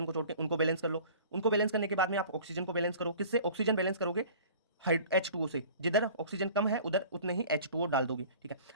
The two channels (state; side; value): inverted; both; correlation -0.45